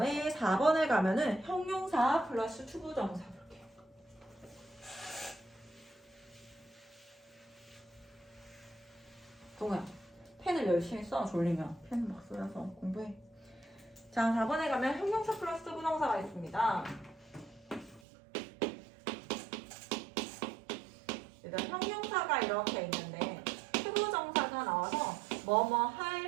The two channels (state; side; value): drops out; left; at 18.0 s